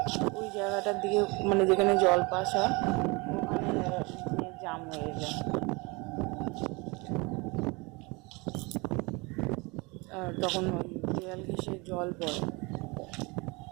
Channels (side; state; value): left; quieter; 27.2 dB